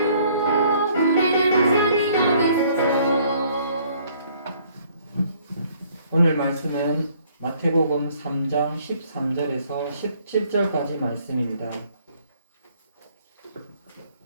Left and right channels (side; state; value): both; inverted; correlation -0.62